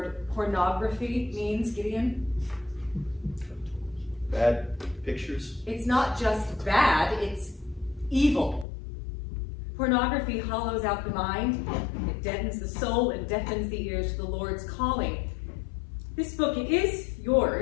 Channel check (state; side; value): drops out; right; at 8.7 s